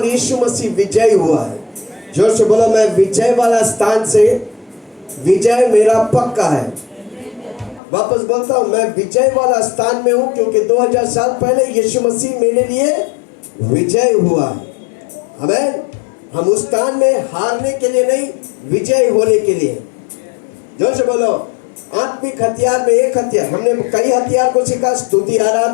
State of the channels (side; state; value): right; drops out; at 7.8 s